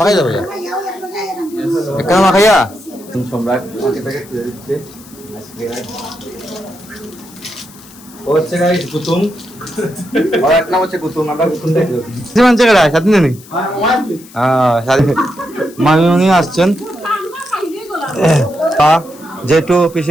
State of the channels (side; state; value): left; noise; hiss, 21 dB below the sound